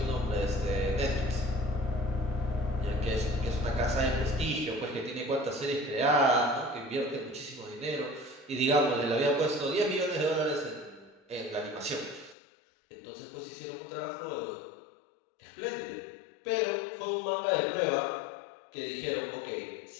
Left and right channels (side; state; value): right; drops out; at 12.4 s